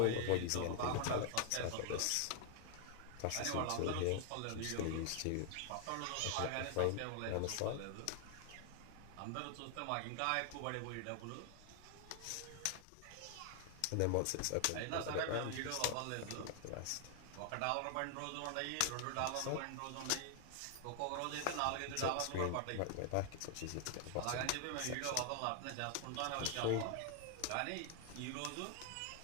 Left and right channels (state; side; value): different; both; correlation 0.00